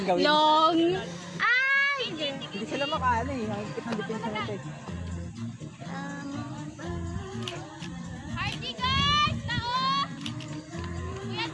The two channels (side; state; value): both; identical; correlation 1.00